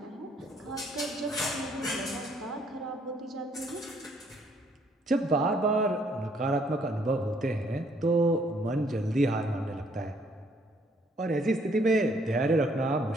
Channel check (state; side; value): normal; both; correlation 0.66